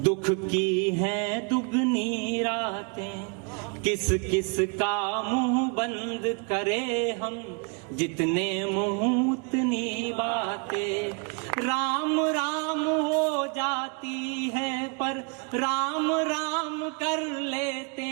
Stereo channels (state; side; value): quieter; left; 35.1 dB